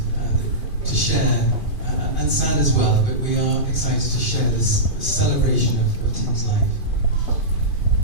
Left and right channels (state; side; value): late; right; 2.5 ms